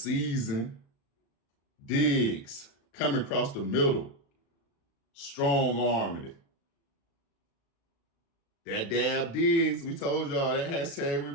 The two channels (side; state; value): right; late; 36 ms